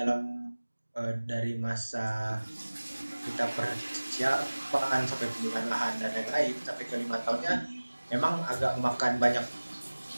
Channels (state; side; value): inverted; both; correlation -1.00